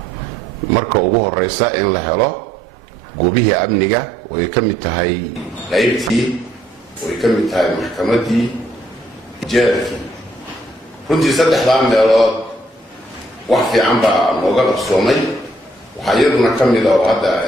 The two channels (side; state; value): both; normal; correlation 0.68